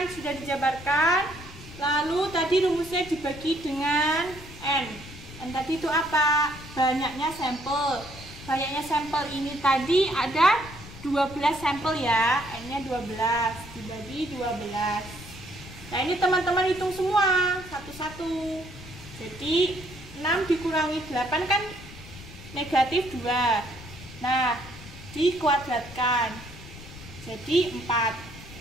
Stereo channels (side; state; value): left; noise; rumble, 16 dB below the sound